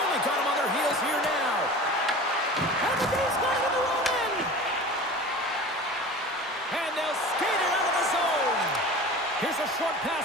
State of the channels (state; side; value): normal; both; correlation 0.37